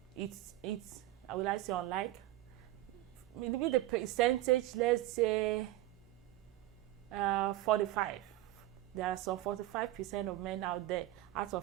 It's will I say unlike? Maybe the percentage, let's say 45. There are some 45% of men out there out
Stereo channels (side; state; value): left; quieter; 15.6 dB